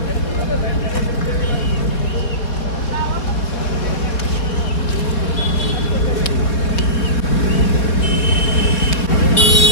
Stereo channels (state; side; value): late; right; 4.0 ms